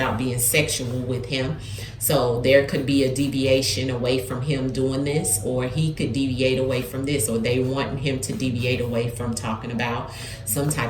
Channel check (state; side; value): identical; both; correlation 1.00